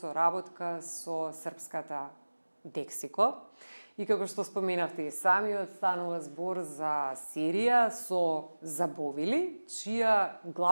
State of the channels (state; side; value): inverted; both; correlation -1.00